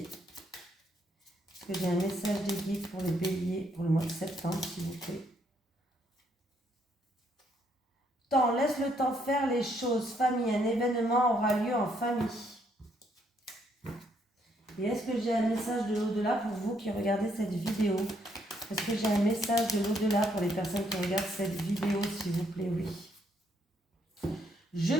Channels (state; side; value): normal; both; correlation 0.72